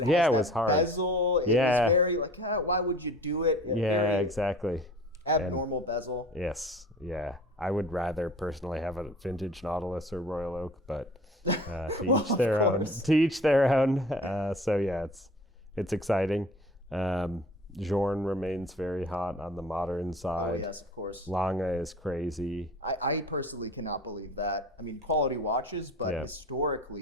was hard. Bezel. It was very like, why would you do it? Exactly. Abnormal bezel. Yes, yeah. I would rather personally have a vintage Nautilus or Royal Oak, but to each their own. To each their own. So yeah, it's exciting. Journe remains very hot on the modern side. Oh, yes, of course. Lange is crazy. I personally cannot believe that. I mean, quality watches, but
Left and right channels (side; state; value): both; normal; correlation 0.44